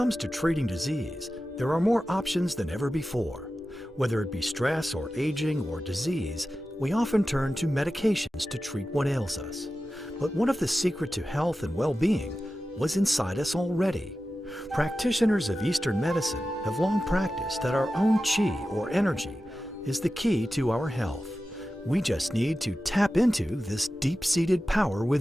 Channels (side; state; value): both; normal; correlation 0.93